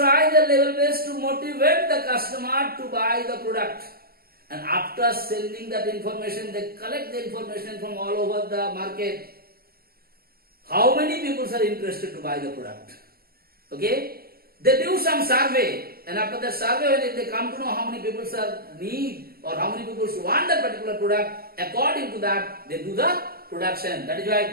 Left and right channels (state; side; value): late; left; 0.44 ms